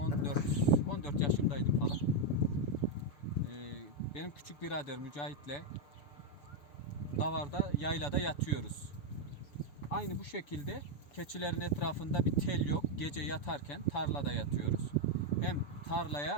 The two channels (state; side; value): late; right; 7.0 ms